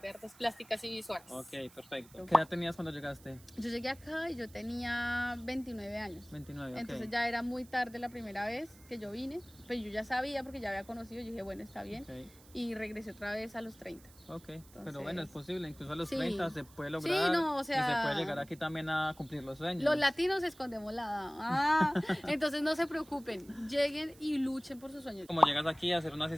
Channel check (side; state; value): right; noise; hiss, 24 dB below the sound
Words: de Artes Plásticas y Visuales. Ok, perfecto. ¿Qué edad tenías cuando llegaste? Yo llegué acá y yo tenía 29 años. 29, ok. Entonces ya era muy tarde la primera vez que yo vine, pero yo ya sabía porque ya había conocido, yo dije, bueno, está bien. Okay. Y regresé otra vez a los 30. Ok, Entonces, pero bueno, es posible, incluso a los sí. 30 se puede lograr. Sí, no, o sea, y se puede llegar aquí también a cumplir los sueños. Los latinos escondemos la edad. Entonces no se preocupen, lleguen y luchen por sus sueños. ¿Cómo llegas aquí a hacer una